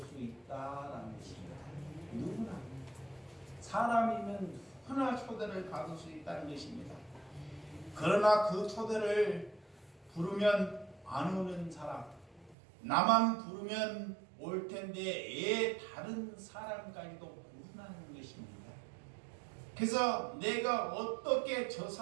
있다라는 것입니다. 누구나 사람이면 누구나 초대를 받을 수 있다는 것입니다. 그러나 그 초대를 부르면 안 오는 사람, 나만 부르면 올 텐데 애 다른 사람까지도 부르는 것입니다. 그래서 내가 어떻게 저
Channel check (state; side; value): drops out; left; at 12.6 s